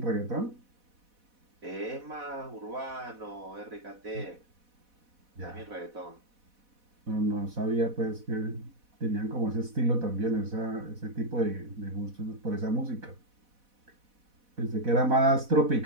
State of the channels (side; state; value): left; late; 4.1 ms